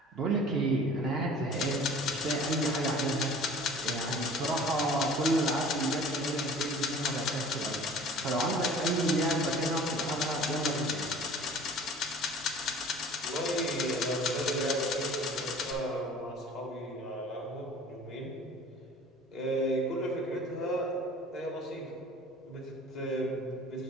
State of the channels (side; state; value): both; normal; correlation 0.46